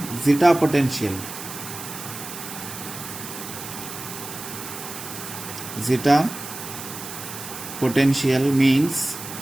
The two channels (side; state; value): right; noise; hiss, 10 dB below the sound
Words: zeta potential. Zeta potential means,